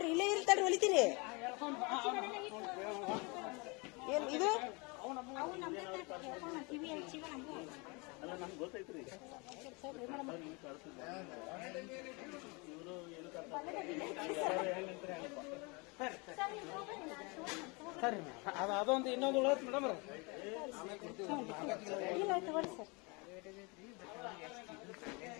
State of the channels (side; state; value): right; quieter; 29.2 dB